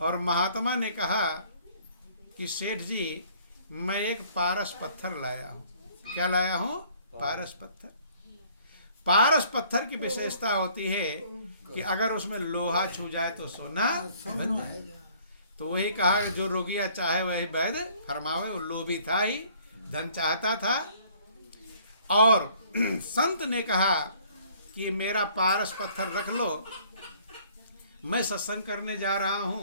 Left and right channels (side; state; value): both; inverted; correlation -0.58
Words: और महात्मा ने कहा कि सेठ जी मैं एक पारस पत्थर लाया हूँ। क्या लाया हूँ? पारस पत्थर। पारस पत्थर की विशेषता होती है कि अगर उसमें लोहा छू जाए तो सोना बन जाए। तो वही कहा कि जो रोगिया चाहे वही वैद्य फरमावे। वो लोभी था ही, धन चाहता था। और संत ने कहा कि मेरा पारस पत्थर रख लो, मैं सत्संग करने जा रहा